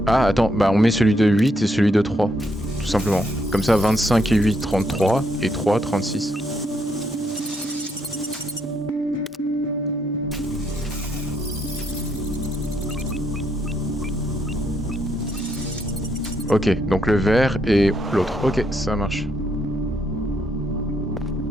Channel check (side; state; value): both; normal; correlation 0.75